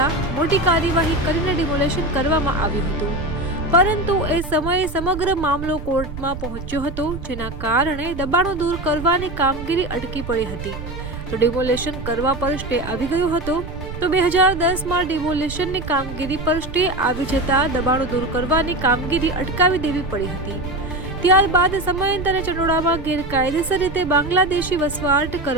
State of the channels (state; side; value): noise; right; rumble, 9 dB below the sound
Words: મોટી કાર્યવાહી કરીને ડિમોલેશન કરવામાં આવ્યું હતું, પરંતુ એ સમયે સમગ્ર મામલો કોર્ટમાં પહોંચ્યો હતો, જેના કારણે દબાણો દૂર કરવાની કામગીરી અટકી પડી હતી। તો ડિમોલેશન કરવા પર સ્ટે આવી ગયો હતો। તો 2010માં ડિમોલેશનની કામગીરી પર સ્ટે આવી જતા દબાણો દૂર કરવાની કામગીરી અટકાવી દેવી પડી હતી। ત્યારબાદ સમયાંતરે ચનોડામાં ગેરકાયદેસર રીતે બાંગ્લાદેશી વસવાટ